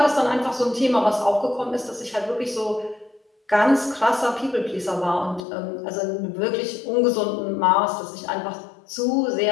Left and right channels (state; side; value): drops out; right; at 5.5 s